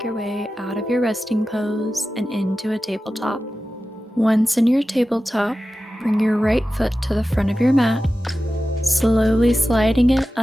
your way out of your resting pose and into a tabletop. Once in your tabletop, bring your right foot to the front of your mat, slowly sliding it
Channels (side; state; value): both; normal; correlation 0.94